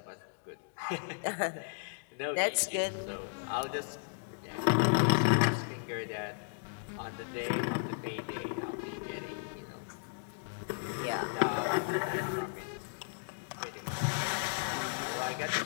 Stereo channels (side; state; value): right; silent; digital silence